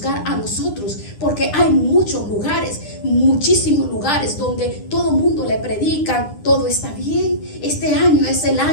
a nosotros. Porque hay muchos lugares, muchísimos lugares donde todo el mundo le predican, todo está bien. Este año es el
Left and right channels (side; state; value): right; late; 9.9 ms